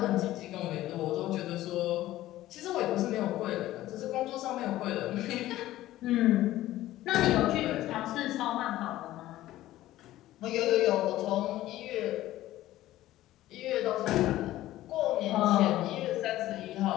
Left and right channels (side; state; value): right; quieter; 15.1 dB